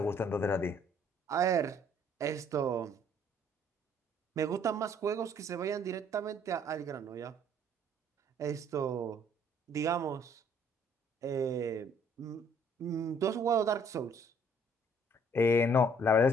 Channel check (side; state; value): both; normal; correlation 0.61